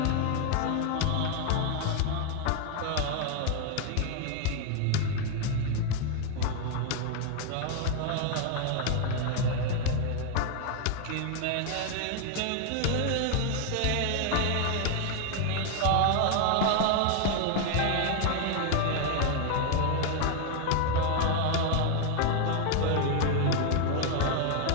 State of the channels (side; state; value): both; different; correlation 0.01